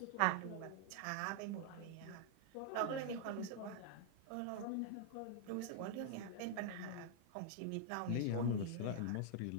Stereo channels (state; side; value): different; both; correlation 0.00